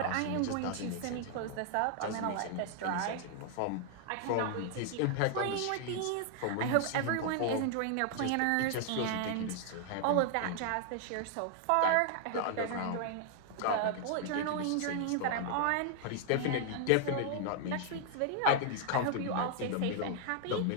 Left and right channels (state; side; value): different; both; correlation 0.00